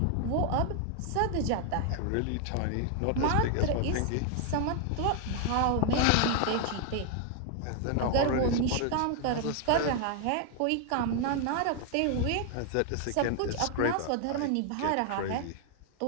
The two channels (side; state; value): both; different; correlation 0.00